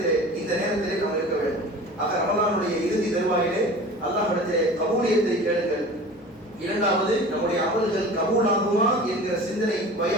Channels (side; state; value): both; normal; correlation 0.39